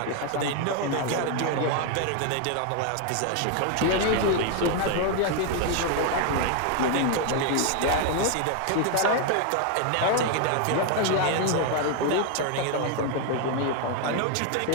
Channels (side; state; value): both; different; correlation 0.01